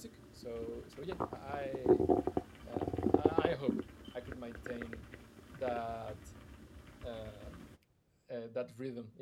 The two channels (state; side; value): identical; both; correlation 1.00